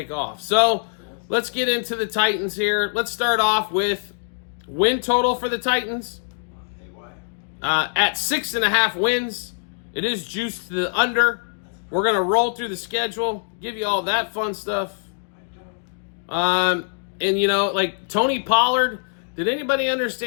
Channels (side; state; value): right; silent; digital silence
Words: off. So let's get into the Titans here. Let's start off with win total for the Titans. At 6.5 wins, it is juiced to the under. We're going to roll through the schedule, give you all that fun stuff. And, like Tony Pollard, did anybody